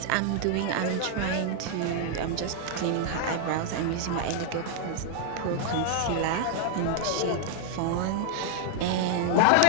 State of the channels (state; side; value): different; both; correlation 0.00